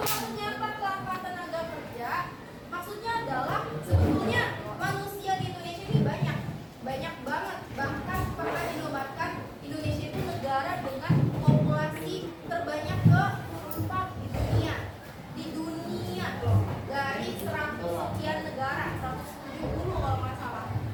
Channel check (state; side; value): identical; both; correlation 1.00